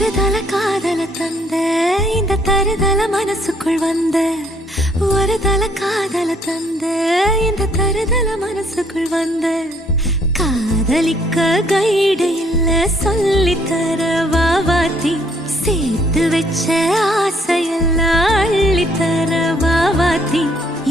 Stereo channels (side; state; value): both; normal; correlation 0.66